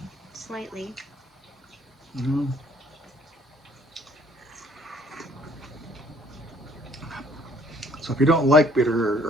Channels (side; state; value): both; normal; correlation 0.59